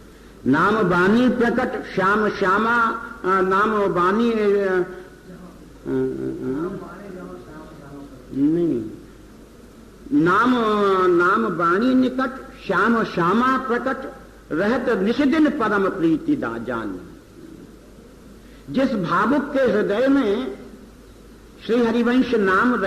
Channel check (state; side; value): identical; both; correlation 1.00